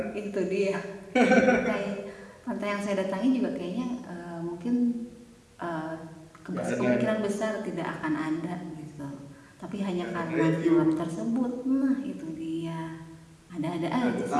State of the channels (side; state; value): both; identical; correlation 1.00